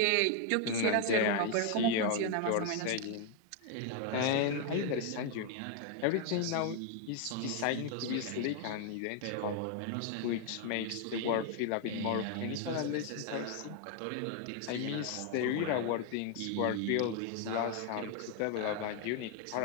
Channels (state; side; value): different; both; correlation 0.00